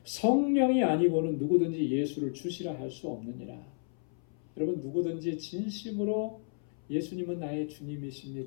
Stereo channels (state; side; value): silent; right; 56 dB below the other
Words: 성령이 아니고는 누구든지 예수를 주시라 할 수 없느니라. 여러분, 누구든지 진심으로 예수님은 나의